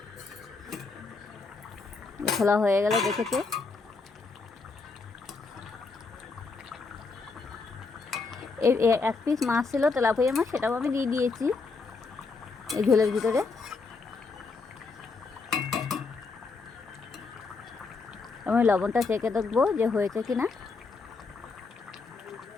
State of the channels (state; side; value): quieter; right; 4.2 dB